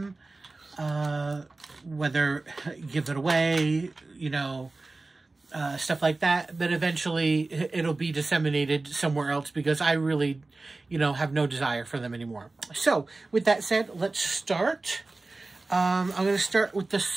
whether give it away, you know, stuff like that. But eventually it'll be disseminated somewhere else because I really, you know, have no desire for them anymore. So with that said, let's start. I'm going to start with the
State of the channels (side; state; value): left; quieter; 3.3 dB